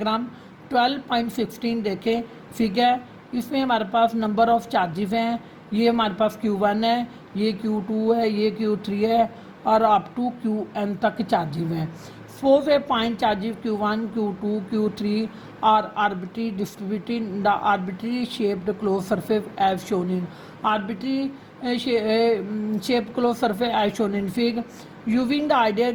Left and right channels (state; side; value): identical; both; correlation 1.00